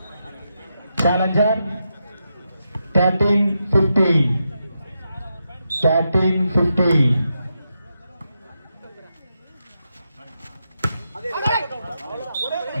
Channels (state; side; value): inverted; both; correlation -0.85